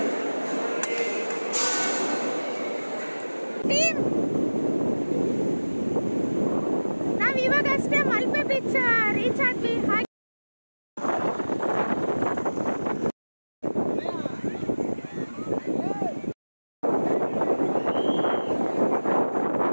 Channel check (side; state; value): both; inverted; correlation -1.00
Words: ನಾವ್ ಇವಾಗ ಅಷ್ಟೇ ಮಲ್ಪೆ ಬೀಚ್ ರೀಚ್ ಆದ್ವಿ.